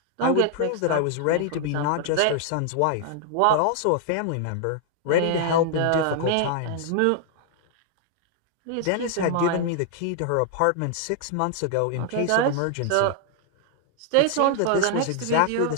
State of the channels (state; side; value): different; both; correlation 0.00